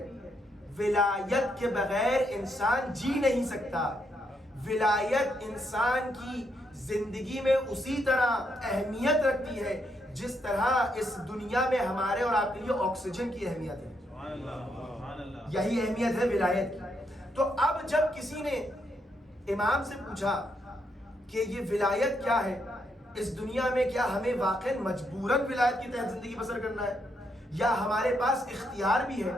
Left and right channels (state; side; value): normal; both; correlation 0.78